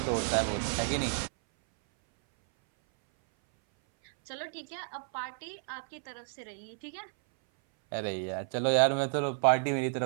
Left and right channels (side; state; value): left; silent; 57 dB below the other